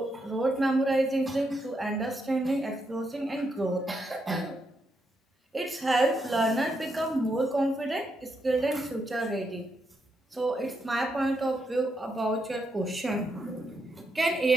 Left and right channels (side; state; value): both; normal; correlation 0.80